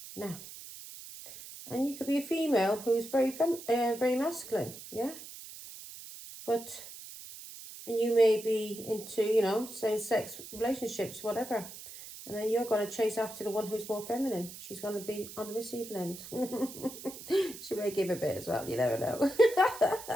Now, And you could be a female who's very masculine, yeah? But, and you may be into, you know, same-sex relationships, whatever. And then you're going to chase after the one who's more feminine. She's going to be on the receiving end. She may give a bit as well, you never know.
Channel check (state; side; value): noise; right; hiss, 13 dB below the sound